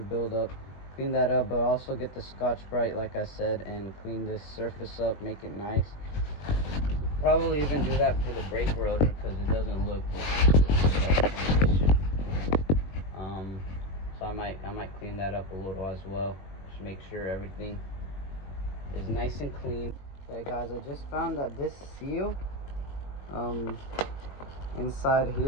buildup. Clean that up, but also get the Scotch-Brite like I said and clean this surface up, make it nice. Probably even do that for the brake rotor because it doesn't look so I might clean that up a little as well. Just make sure everything is nice and clean. Okay guys, I just found that this seal inside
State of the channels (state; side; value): late; right; 21 ms